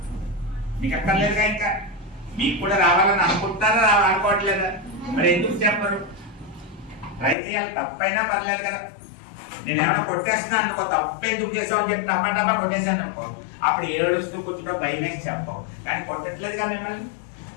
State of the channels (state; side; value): drops out; right; at 7.4 s